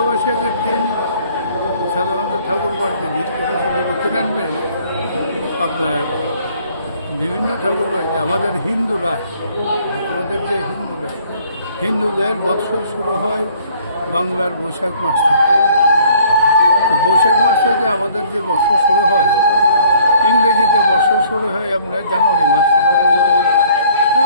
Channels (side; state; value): both; inverted; correlation -0.58